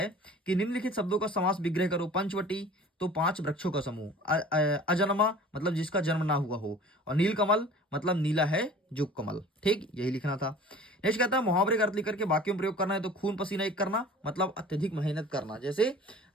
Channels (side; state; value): both; normal; correlation 0.44